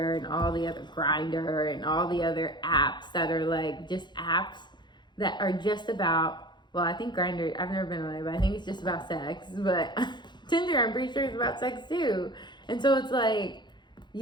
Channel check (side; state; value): right; late; 0.21 ms